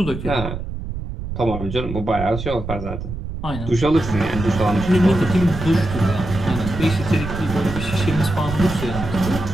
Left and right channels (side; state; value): right; noise; rumble, 7 dB below the sound